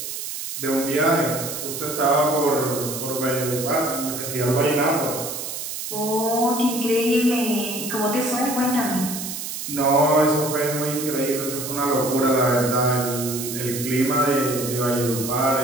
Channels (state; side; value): noise; right; hiss, 6 dB below the sound